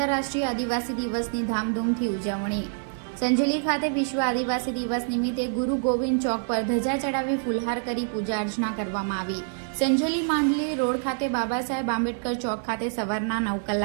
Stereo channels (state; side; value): silent; left; digital silence